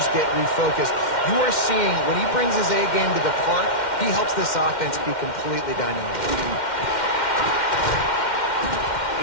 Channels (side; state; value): right; late; 2.1 ms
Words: get refocused. You are seeing when he brings his A game to the park, he helps this offense be completely dynamic.